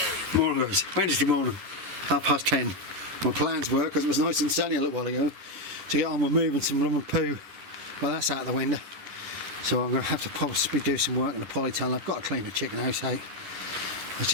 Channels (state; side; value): late; left; 11 ms